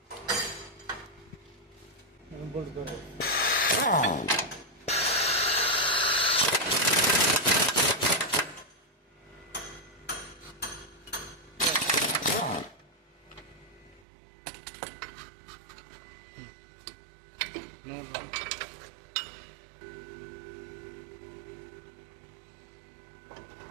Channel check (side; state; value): left; drops out; at 14.1 s